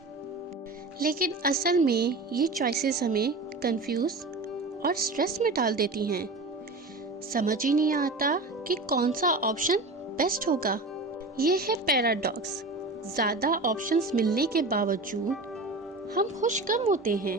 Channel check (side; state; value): left; quieter; 3.2 dB